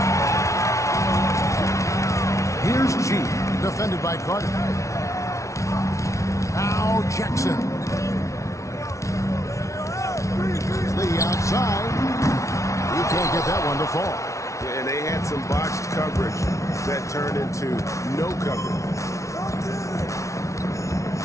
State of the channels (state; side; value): late; right; 0.14 ms